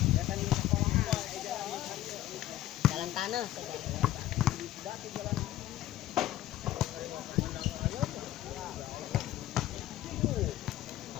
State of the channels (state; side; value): quieter; right; 13.9 dB